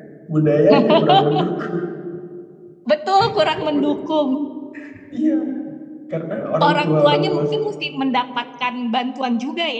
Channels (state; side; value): identical; both; correlation 1.00